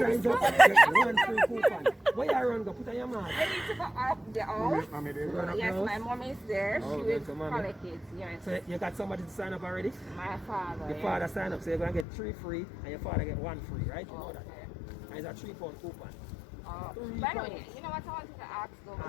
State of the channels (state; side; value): drops out; right; at 12.1 s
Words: signs this up one? gets 1 free coupon. Where you run, go put on your man. I need to go up the house. Run up Yes, the my house. mom is there. Oh, She okay, will so mommy. collect it. Yes. So you got somebody to sign up already? My father. Your yeah. father sign up, so you're gonna get 3 free and your father get 1 free, right? You know that. Okay. And it's a 3 pound coupon. By the way, you know what I wanted to ask though, Ask.